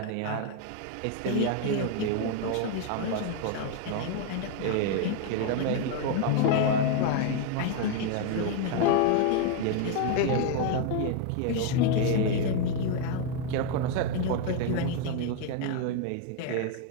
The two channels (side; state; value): both; different; correlation 0.00